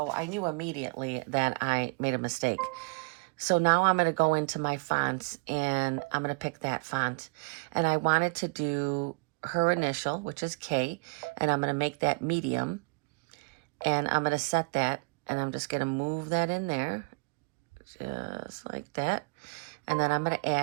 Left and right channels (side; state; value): left; quieter; 31.7 dB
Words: I knew immediately that I made a mistake. So now I'm going to go into my fonts and I'm going to pick that font. And I wanted to do her initial, which is K, and I'm going to make that medium. And I'm going to set that, and I'm just going to move that in there, just like that. And then I'm going to